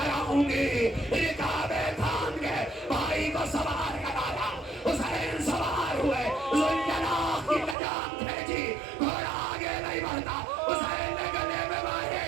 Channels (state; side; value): drops out; left; at 7.8 s